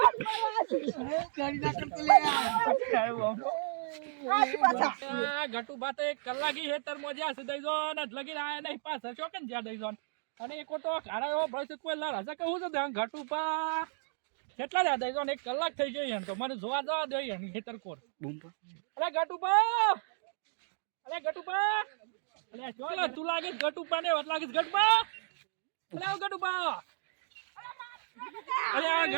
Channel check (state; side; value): silent; left; digital silence